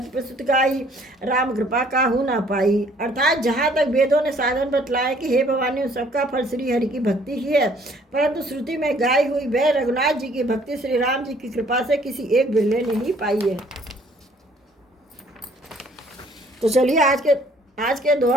प्रस्तुत गाई, राम कृपा काहू ना पाई। अर्थात जहाँ तक वेदों ने साधन बतलाए कि हे भवानी, उन सबका फल श्री हरि की भक्ति ही है, परंतु श्रुति में गाई हुई वह रघुनाथ जी की भक्ति श्री राम जी की कृपा से किसी एक बिरले ने ही पाई है। तो चलिए आज के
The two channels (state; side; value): normal; both; correlation 0.60